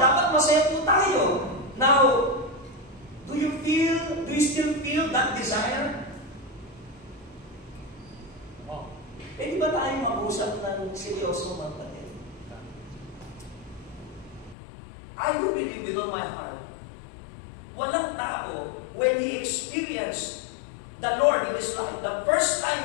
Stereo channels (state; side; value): drops out; right; at 14.6 s